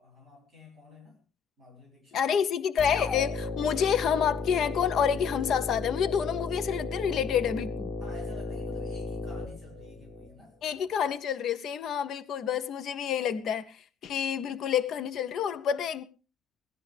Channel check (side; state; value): right; quieter; 7.0 dB